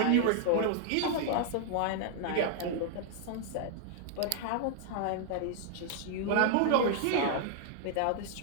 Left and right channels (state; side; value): different; both; correlation 0.00